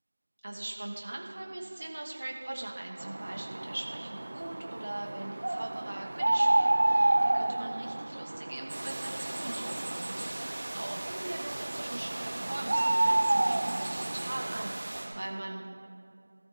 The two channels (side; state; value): both; inverted; correlation -1.00